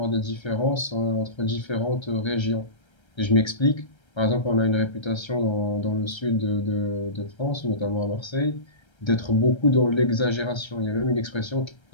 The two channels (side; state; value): right; late; 1.3 ms